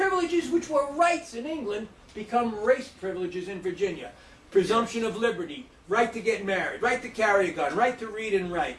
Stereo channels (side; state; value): both; identical; correlation 1.00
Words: which were rights in England become race privileges in Virginia. Presumption of liberty, right to get married, right to carry a gun, right to read and write,